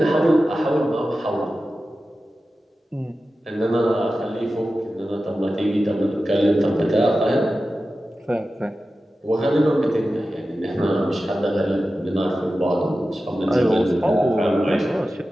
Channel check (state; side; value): normal; both; correlation 0.94